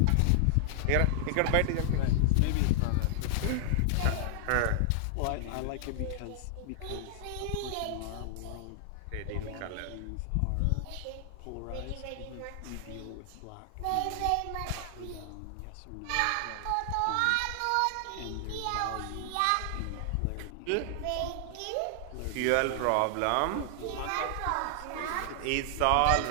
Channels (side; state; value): both; different; correlation 0.00